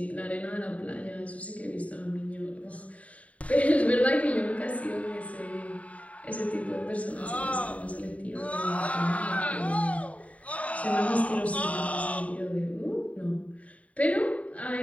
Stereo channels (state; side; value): late; right; 0.067 ms